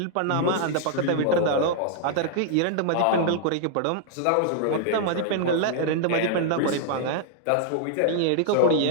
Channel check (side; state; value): both; different; correlation -0.01